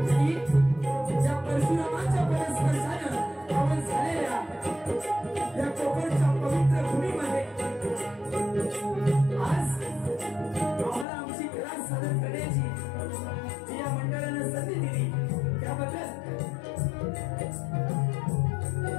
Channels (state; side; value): drops out; right; at 11.1 s